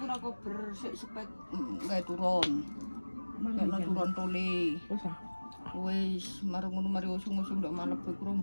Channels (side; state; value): both; inverted; correlation -1.00